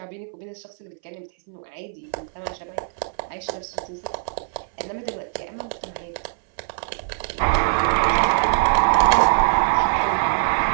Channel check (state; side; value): silent; left; 60 dB below the other